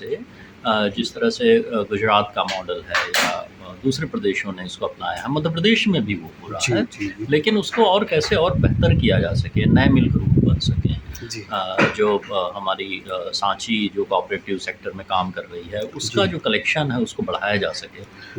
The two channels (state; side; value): identical; both; correlation 1.00